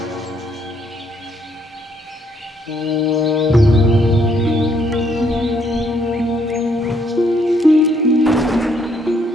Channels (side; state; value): both; normal; correlation 0.70